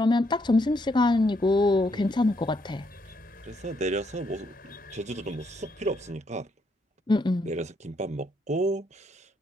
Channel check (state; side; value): normal; both; correlation 0.75